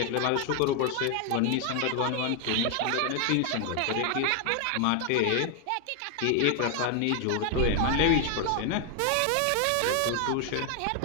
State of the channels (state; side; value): different; both; correlation 0.00